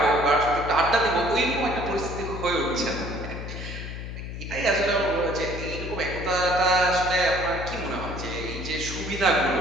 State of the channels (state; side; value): noise; left; hum, 8 dB below the sound